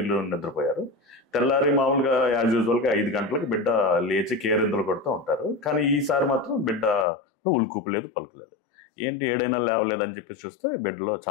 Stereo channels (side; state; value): right; drops out; at 7.1 s